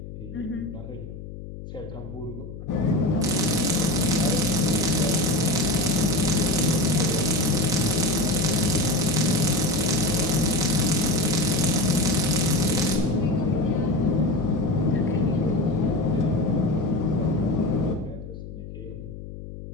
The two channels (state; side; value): noise; left; hum, 12 dB below the sound